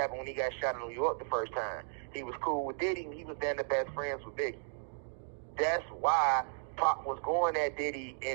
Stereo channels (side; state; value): left; silent; digital silence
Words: when he got shot in New York the first time. He was cool with Diddy, and he was then the best friends with Biggie. That's why Pop was going at Diddy